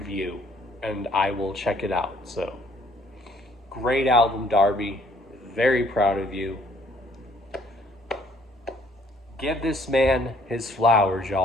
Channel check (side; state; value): both; normal; correlation 0.62